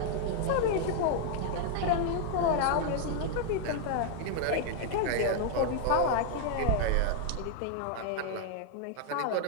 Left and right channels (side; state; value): both; different; correlation 0.00